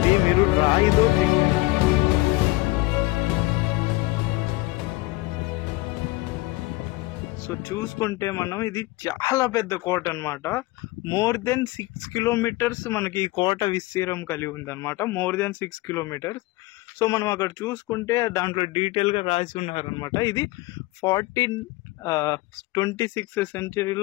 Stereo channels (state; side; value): quieter; right; 20.5 dB